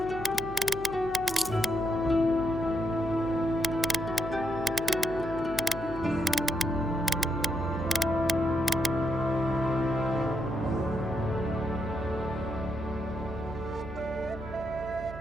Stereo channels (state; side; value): noise; right; hum, 12 dB below the sound